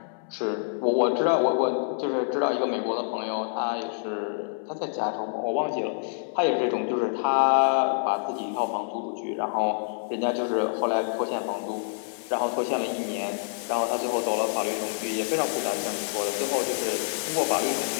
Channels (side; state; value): right; silent; 60 dB below the other